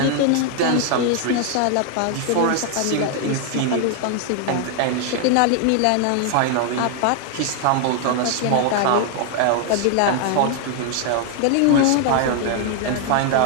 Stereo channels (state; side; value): different; both; correlation 0.00